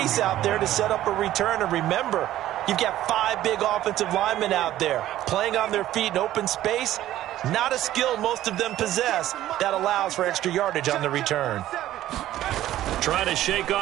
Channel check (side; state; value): left; quieter; 13.6 dB